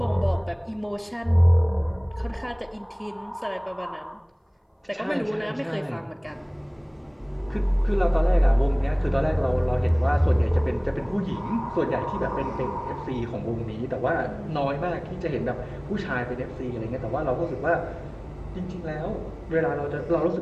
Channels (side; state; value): both; identical; correlation 1.00